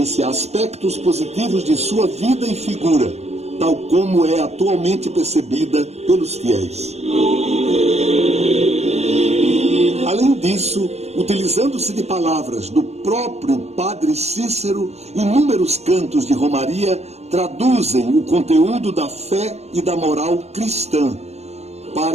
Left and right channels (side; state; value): left; late; 0.31 ms